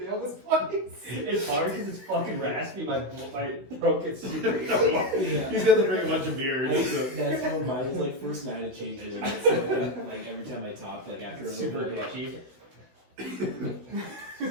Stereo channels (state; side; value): late; left; 16 ms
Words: this place. It's hard because it's fucking raspy. My throat gets super itchy. He's got to drink a bunch of beer. So. That's how mine was like first night it changes. And it's like every time I talk, like after a Super little bit, itchy.